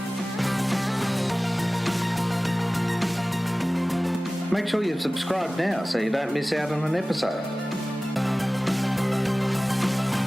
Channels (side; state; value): both; normal; correlation 0.98